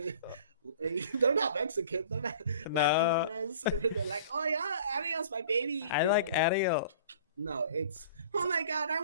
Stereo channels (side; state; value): both; inverted; correlation -0.47